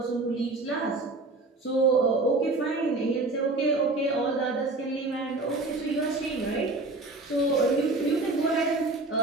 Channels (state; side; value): quieter; left; 3.1 dB